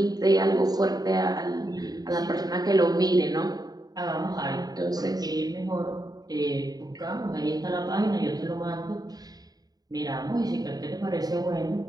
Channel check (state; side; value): late; left; 0.18 ms